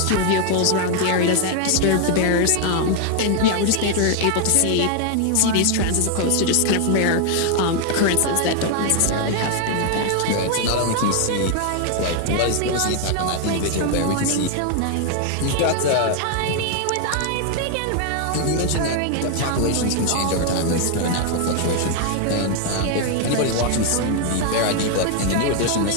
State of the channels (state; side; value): different; both; correlation 0.00